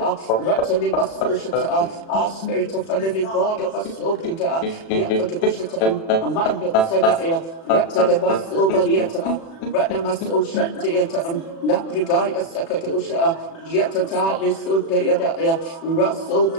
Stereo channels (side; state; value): right; late; 36 ms